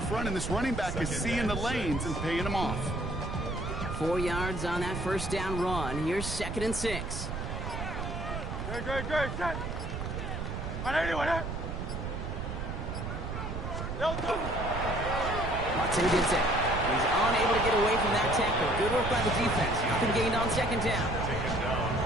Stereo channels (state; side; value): noise; right; rumble, 5 dB below the sound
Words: front, and this running back is seeing the lanes and paying them off. 4 yards on that first down run. Here's 2nd and 6. Great, set. No touch. Watson gets it. He's unable to get away from that tackle. Good work by the defense. Nothing gained on 2nd down.